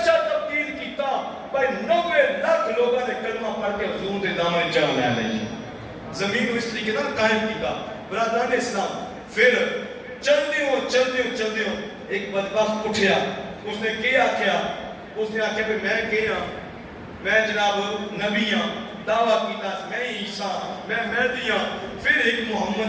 تبدیل کیتا بھائی 90 لاکھ لوگوں نے کلمہ پڑھ کے حضور دے دامن جان لے لئی زمین اس طریقے نال قائم کیتا برادران اسلام پھر چل دیوں ایک بدبخت اٹھیا اس نے کیا کیا اس نے آکھیا کہ میں کیا میں جناب نبی ہاں دعویٰ کیتا میں عیسیٰ میں مہدی ہاں پھر ایک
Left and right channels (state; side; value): identical; both; correlation 1.00